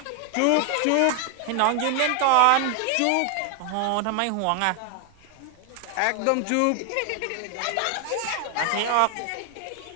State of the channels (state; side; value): different; both; correlation 0.00